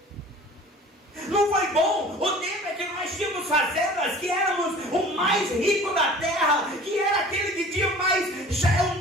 Não foi bom o tempo em que nós tínhamos fazendas, que éramos o mais rico da terra, que era aquele que tinha mais, já é o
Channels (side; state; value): both; normal; correlation 0.44